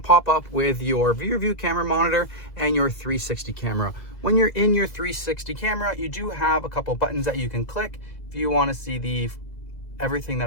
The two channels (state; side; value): late; right; 2.0 ms